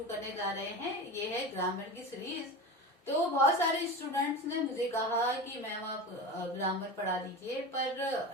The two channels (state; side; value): normal; both; correlation 0.28